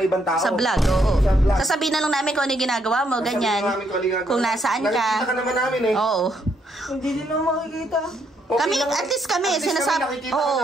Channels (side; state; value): both; normal; correlation 0.74